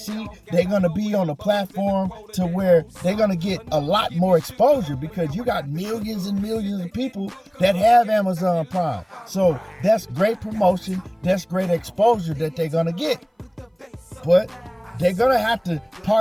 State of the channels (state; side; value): identical; both; correlation 1.00